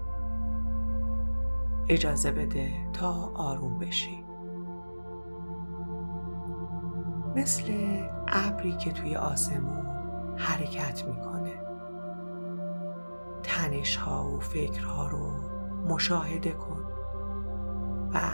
اجازه بده تا آروم بشی. مثل ابری که توی آسمون حرکت میکنه. تنش‌ها و فکرها رو مشاهده کن و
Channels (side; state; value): both; inverted; correlation -1.00